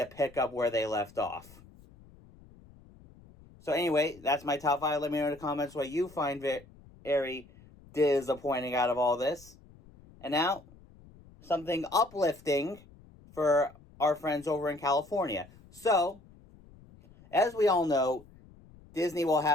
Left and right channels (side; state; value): left; noise; rumble, 24 dB below the sound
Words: up where they left off. So anyway, that's my top 5. Let me know in the comments what you find very disappointing out of all this. And now, something uplifting for our friends over in California. So, as we all know, Walt